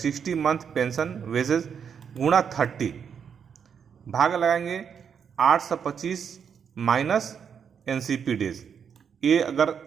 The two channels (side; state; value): left; quieter; 7.3 dB